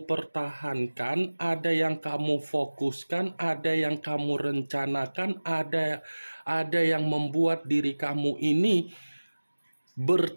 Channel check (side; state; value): both; inverted; correlation -1.00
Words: pertahankan, ada yang kamu fokuskan, ada yang kamu rencanakan, ada yang membuat diri kamu ini